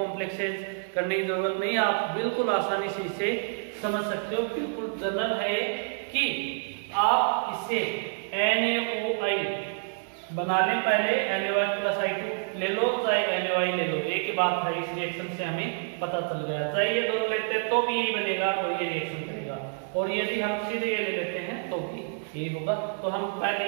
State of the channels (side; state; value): left; silent; 59 dB below the other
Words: करने की जरूरत नहीं, आप बिल्कुल आसानी से इसे समझ सकते हो। बिल्कुल जनरल है कि आप इसे NaOI बनाने पहले NaOH प्लस I2 ले लो, चाहे NaOI ले लो, एक ही बात है। इस रिएक्शन से हमें पता चल गया, चाहे ये दोनों लेते हैं तो भी यही बनेगा और ये रिएक्शन करेगा, और यदि हम सीधे ये ले लेते हैं तो भी यही होगा। तो हम पहले